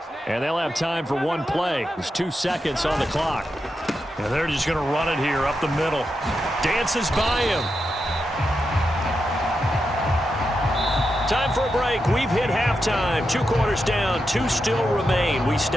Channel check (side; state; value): both; normal; correlation 0.87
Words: And they'll have time for one play. There's 2 seconds on the clock. And they're just going to run it here up the middle. Dances by him. Time for a break. We've hit halftime. 2 quarters down. 2 still remain. We